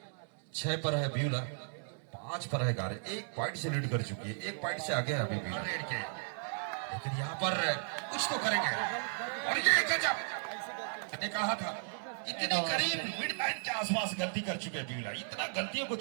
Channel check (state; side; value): silent; left; digital silence